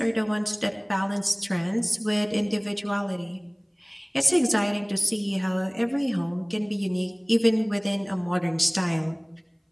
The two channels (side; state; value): both; identical; correlation 1.00